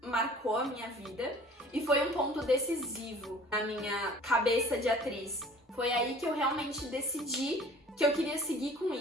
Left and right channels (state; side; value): normal; both; correlation 0.49